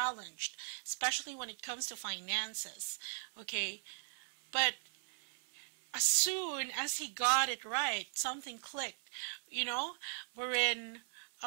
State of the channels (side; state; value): left; silent; 52 dB below the other